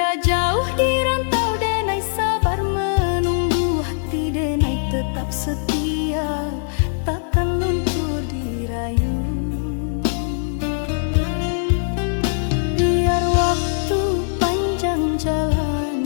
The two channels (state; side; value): silent; right; digital silence